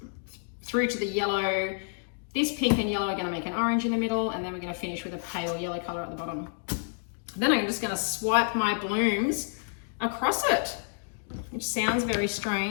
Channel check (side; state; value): right; silent; digital silence